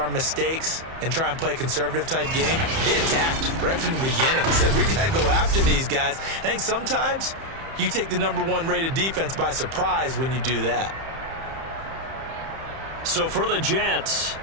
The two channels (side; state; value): left; late; 31 ms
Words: mistakes and try and play a conservative-type game, they attacked right from the beginning. Said, we got to go after these guys. I think sometimes you take the #1 rated defense by surprise when you do that. So for the Jets,